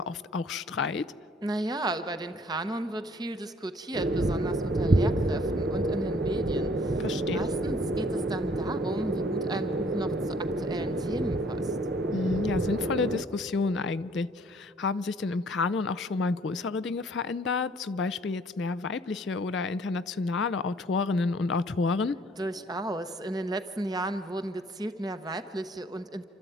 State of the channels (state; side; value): normal; both; correlation 0.59